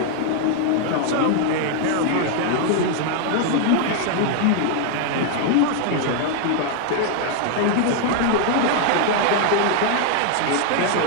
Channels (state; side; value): different; both; correlation 0.00